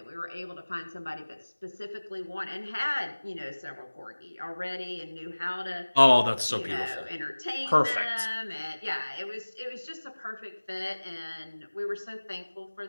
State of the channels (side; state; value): both; inverted; correlation -1.00